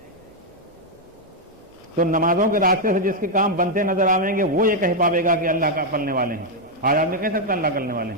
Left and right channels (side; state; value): both; normal; correlation 0.00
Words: تو نمازوں کے راستے سے جس کے کام بنتے نظر آئیں گے وہ یہ کہہ پاوے گا کہ اللہ کا پلنے والے ہیں. آج آدمی کہہ سکتا اللہ کرنے والے